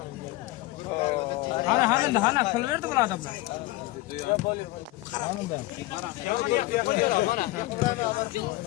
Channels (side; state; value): right; quieter; 19.0 dB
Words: Hana kıl verdi bu adamlar. Hanım ben.